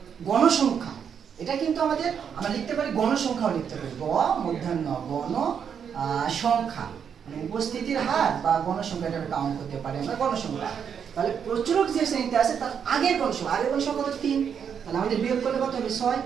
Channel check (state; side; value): quieter; left; 7.6 dB